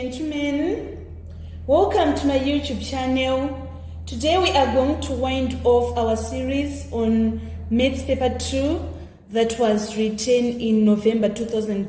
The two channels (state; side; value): identical; both; correlation 1.00